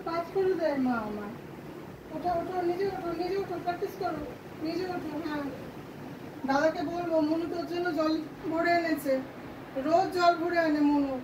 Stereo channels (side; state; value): both; identical; correlation 1.00